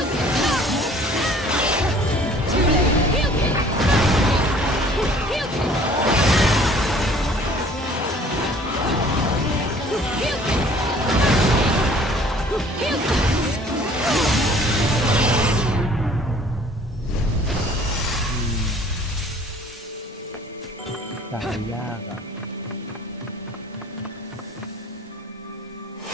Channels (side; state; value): both; normal; correlation 0.53